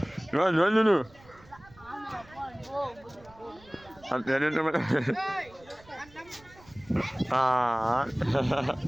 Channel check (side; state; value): right; noise; rumble, 25 dB below the sound